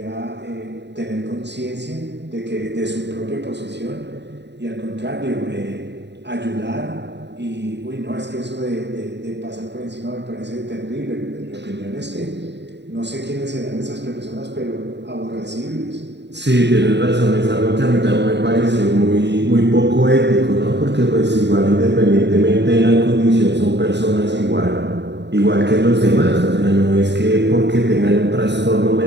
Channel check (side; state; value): left; late; 0.50 ms